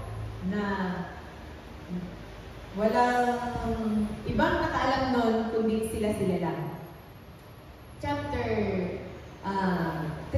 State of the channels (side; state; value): both; identical; correlation 1.00